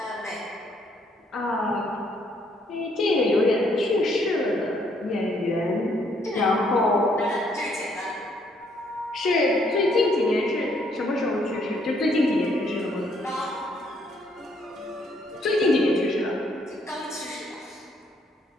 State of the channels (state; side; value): normal; both; correlation 0.69